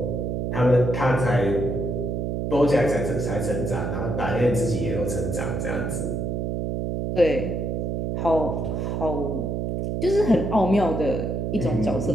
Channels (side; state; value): right; noise; hum, 1 dB below the sound